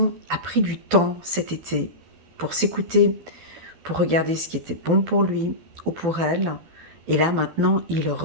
a pris du temps cet été pour s'écouter, pour regarder ce qui était bon pour lui ou pour elle. Et là maintenant, ils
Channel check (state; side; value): late; left; 12 ms